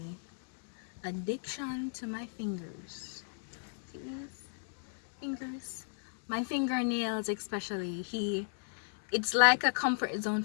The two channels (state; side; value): silent; right; digital silence